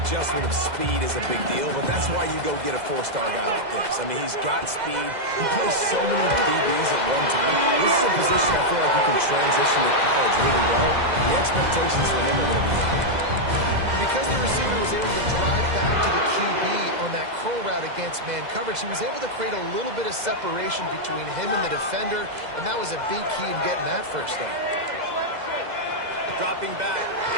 of speed is a big deal, but that's why you go get a 4-star guy like this. I mean, he's got speed. He plays so many DBs at one time. This is a position I feel like he can transition to college really well. The expectations for him are going to be high. Because the receiver was able to drive back to the QB on that curl route against man coverage, he was able to create a little bit of separation between him and the defender, and that was a big key in getting that 1st down. Dropping back,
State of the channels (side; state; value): left; late; 2.0 ms